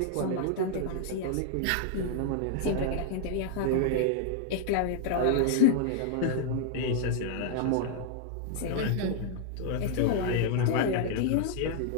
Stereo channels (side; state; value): both; different; correlation -0.01